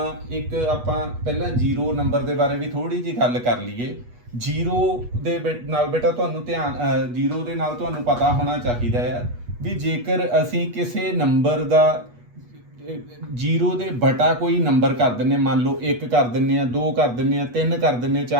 ਇੱਕ ਆਪਾਂ ਪਹਿਲਾਂ 0 ਨੰਬਰ ਦੇ ਬਾਰੇ ਵੀ ਥੋੜੀ ਜਿਹੀ ਗੱਲ ਕਰ ਲਈਏ। 0 ਦੇ ਨਾਲ ਬੇਟਾ ਤੁਹਾਨੂੰ ਧਿਆਨ 0 ਦੇ ਨਾਲ ਤੁਹਾਨੂੰ ਪਤਾ ਹੋਣਾ ਚਾਹੀਦਾ ਆ ਵੀ ਜੇਕਰ ਅਸੀਂ ਕਿਸੇ ਨੰਬਰ ਦਾ 0 ਦੇ ਬਟਾ ਕੋਈ ਨੰਬਰ ਕਰ ਦਿੰਦੇ, ਮੰਨ ਲਓ 1 ਕਰ ਦਿੰਦੇ ਆ, 2 ਕਰ ਦਿੰਦੇ ਆ, 3 ਕਰ ਦਿੰਦੇ ਆ,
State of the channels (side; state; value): left; late; 8.3 ms